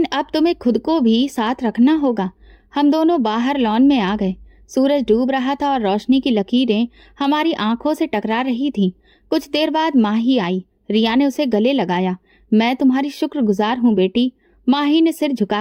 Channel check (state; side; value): identical; both; correlation 1.00